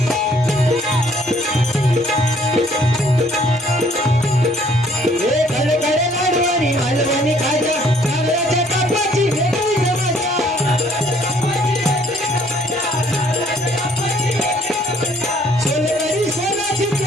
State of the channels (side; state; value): both; normal; correlation 0.61